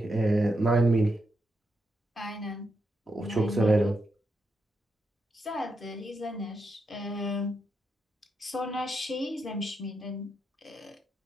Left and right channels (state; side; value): normal; both; correlation 0.83